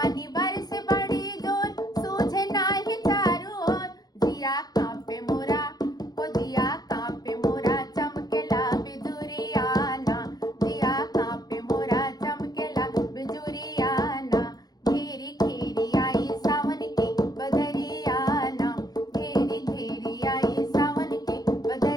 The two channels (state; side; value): late; right; 0.19 ms